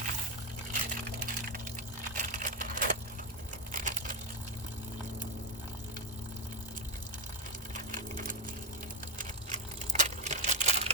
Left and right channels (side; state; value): both; normal; correlation 0.08